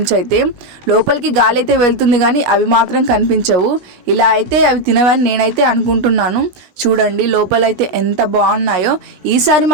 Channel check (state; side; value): late; left; 16 ms